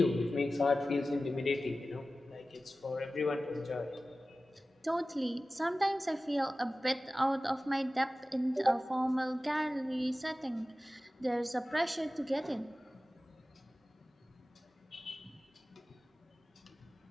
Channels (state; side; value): normal; both; correlation 0.96